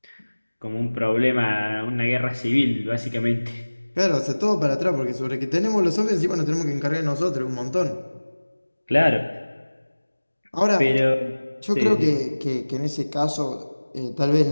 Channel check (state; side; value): inverted; both; correlation -1.00